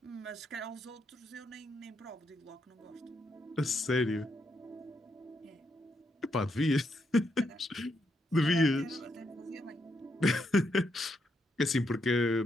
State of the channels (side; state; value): both; normal; correlation 0.79